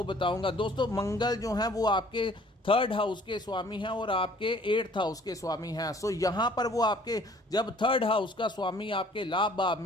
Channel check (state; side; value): normal; both; correlation 0.55